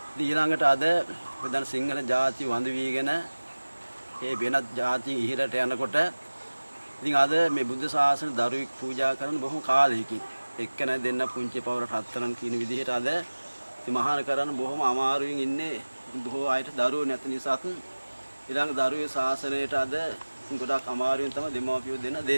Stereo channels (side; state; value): both; inverted; correlation -1.00